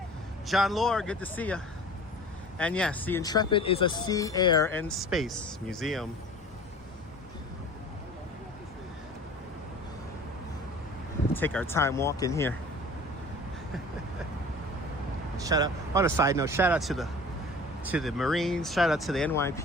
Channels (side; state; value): both; normal; correlation 0.43